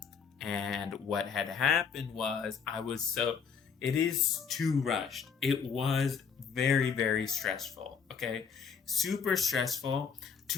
And what had happened was it is too rushed. It was very, very stressful. Okay, super stressful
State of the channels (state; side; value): quieter; right; 6.4 dB